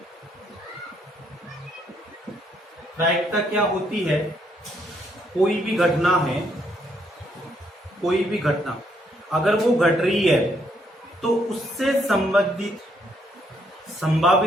क्या होती है? कोई भी घटना है, कोई भी घटना अगर वो घट रही है तो उससे संभावित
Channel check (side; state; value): both; normal; correlation 0.72